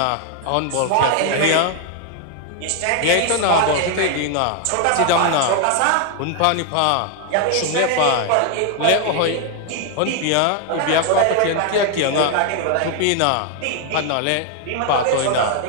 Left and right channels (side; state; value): both; different; correlation 0.00